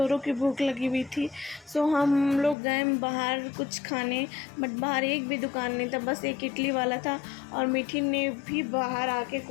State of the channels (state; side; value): drops out; right; at 2.6 s